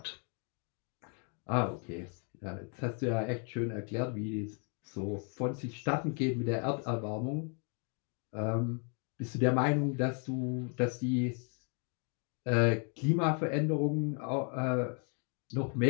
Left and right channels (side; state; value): right; quieter; 39.9 dB